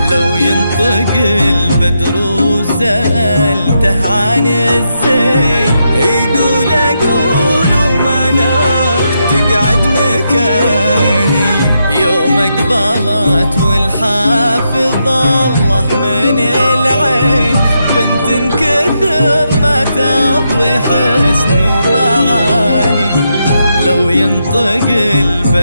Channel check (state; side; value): inverted; both; correlation -0.82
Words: لو ينطق البدر وسألته عن الزين، يقول أقول ومنار تقعد مكاني. يوم اقبلت والحافظ الله من العين، بنت كثر ما تضوي حسن ومعاني. لو ينطق